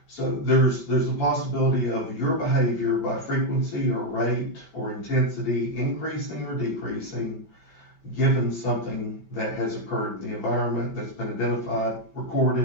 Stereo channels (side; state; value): right; late; 5.2 ms